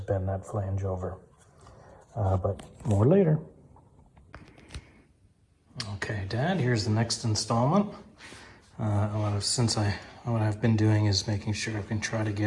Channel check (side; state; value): both; identical; correlation 1.00